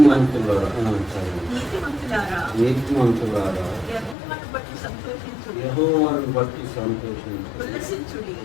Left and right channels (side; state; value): right; drops out; at 4.2 s